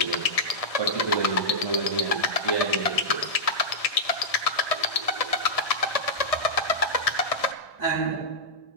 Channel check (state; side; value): late; right; 1.6 ms